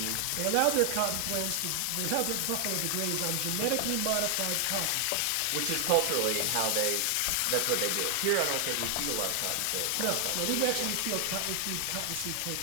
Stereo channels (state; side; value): different; both; correlation 0.00